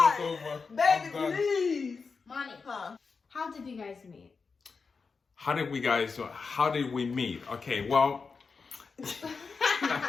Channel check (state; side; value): quieter; right; 4.9 dB